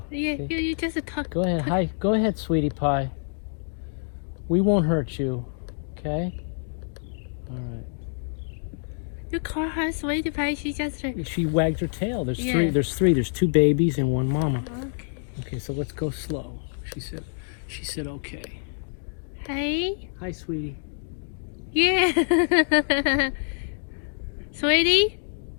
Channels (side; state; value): right; silent; digital silence